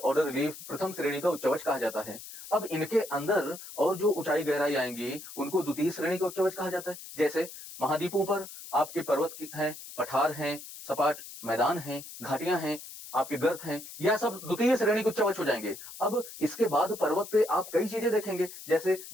रिलीफ, प्रथम श्रेणी का उच्चावच कहा जाता है। अब इनके अंदर और जो ऊंचाई गहराई आएंगी उनको द्वितीय श्रेणी का उच्चावच कहा जाता है। जैसे महाद्वीपों पर आपके पर्वत हैं, पठार हैं, सपाट मैदान हैं, घाटियां हैं, आपके गर्त हैं, यह सब द्वितीय श्रेणी के उच्चावच हो जाएंगे। अब इसके बाद पर्वत पे आप कई चीजें देखेंगे, जैसे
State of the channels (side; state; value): left; noise; hiss, 13 dB below the sound